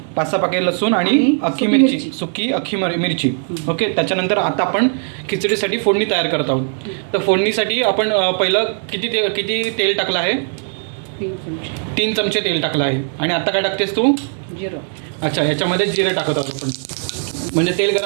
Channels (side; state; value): left; silent; digital silence